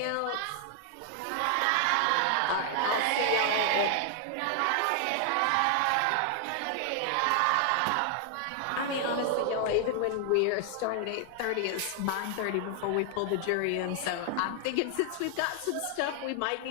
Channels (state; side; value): different; both; correlation 0.00